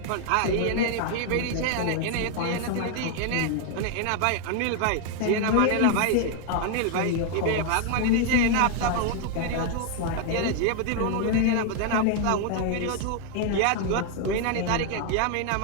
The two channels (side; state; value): both; different; correlation 0.00